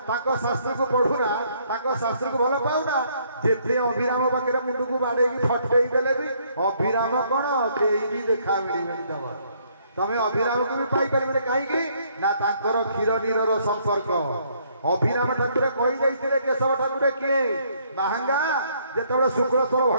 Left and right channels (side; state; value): both; inverted; correlation -0.67